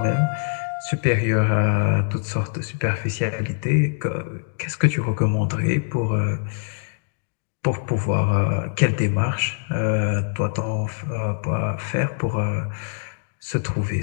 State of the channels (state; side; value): silent; right; 63 dB below the other